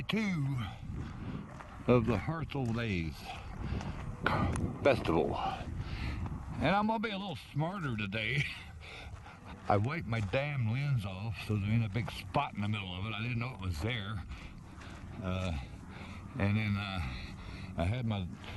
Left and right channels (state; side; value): identical; both; correlation 1.00